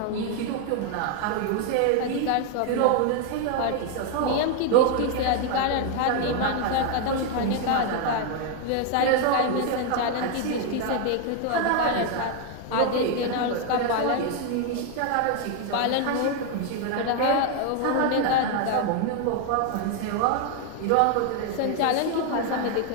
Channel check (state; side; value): different; both; correlation 0.01